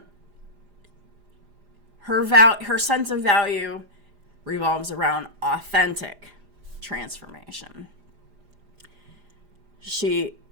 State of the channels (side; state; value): left; late; 4.9 ms